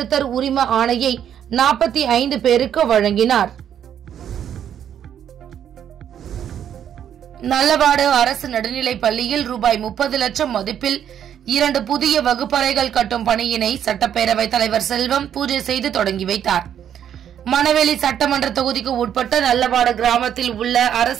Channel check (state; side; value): quieter; left; 9.5 dB